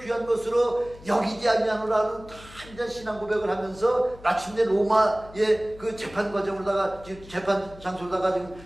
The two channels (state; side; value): noise; left; hum, 20 dB below the sound